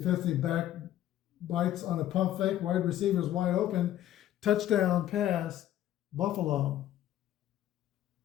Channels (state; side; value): quieter; right; 12.4 dB